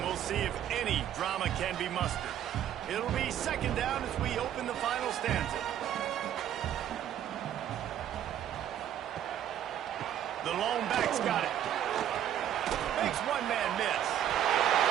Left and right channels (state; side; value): quieter; left; 10.7 dB